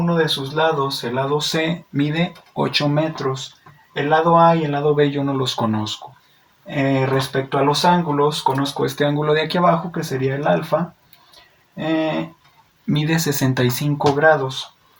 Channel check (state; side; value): identical; both; correlation 1.00